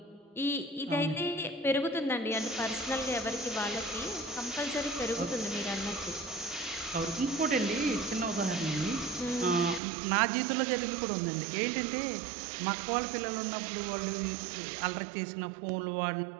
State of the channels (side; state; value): left; drops out; at 9.8 s